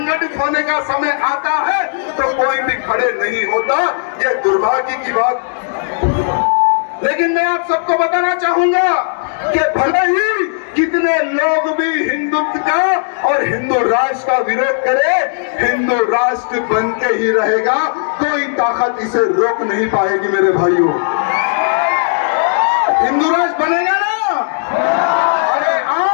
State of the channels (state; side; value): silent; right; digital silence